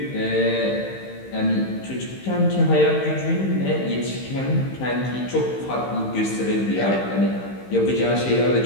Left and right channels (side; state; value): right; late; 15 ms